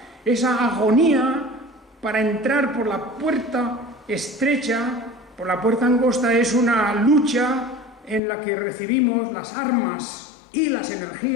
esa agonía para entrar por la puerta estrecha, por la puerta angosta, es una lucha en la que recibimos las armas y las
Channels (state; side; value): drops out; right; at 8.2 s